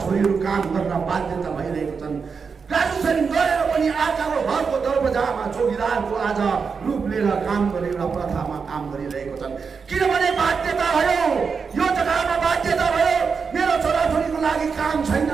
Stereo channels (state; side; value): quieter; left; 5.5 dB